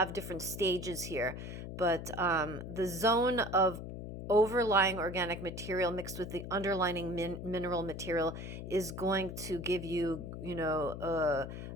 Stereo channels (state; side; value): noise; left; hum, 8 dB below the sound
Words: different stages here, but the zone of overlying organic material mixed with the underlying mineral material is going to give you,